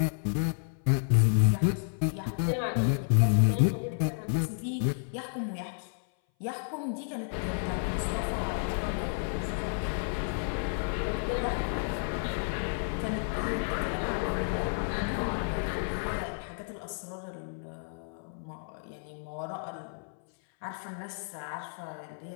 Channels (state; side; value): silent; right; 57 dB below the other